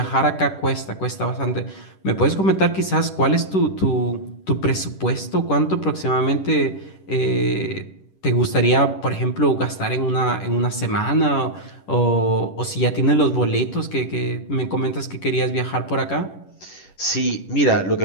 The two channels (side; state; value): right; late; 10 ms